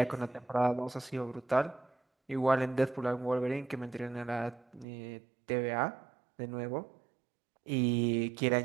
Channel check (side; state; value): left; drops out; at 4.9 s